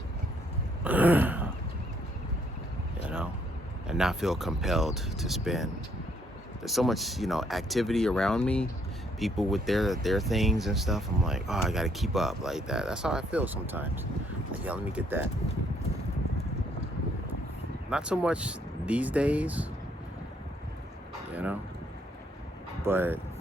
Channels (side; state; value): both; normal; correlation 0.69